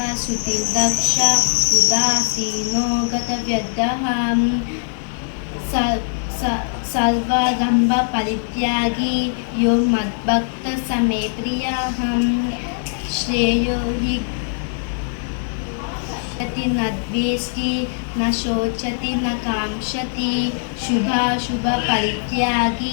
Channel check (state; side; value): silent; right; 62 dB below the other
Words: श्रुतिर्दक्ष उदासीनो गतव्यर्थः सर्वारम्भपरित्यागी यो मद्भक्तः स मे प्रियः। श्रेयो हि न द्वेष्टि न शोचति न काङ्क्षति